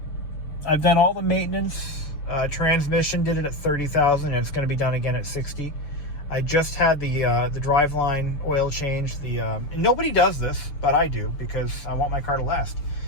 I've done all the maintenance. Transmission did it at 30,000, and it's going to be done again at 60. I just had the driveline oil change. And nobody does this, but I do because I want my car to last.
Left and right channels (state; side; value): late; right; 6.8 ms